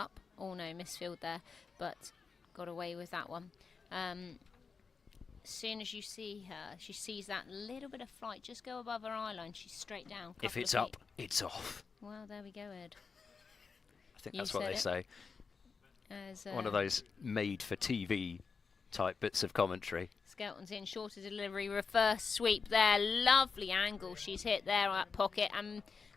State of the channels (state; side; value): quieter; right; 5.2 dB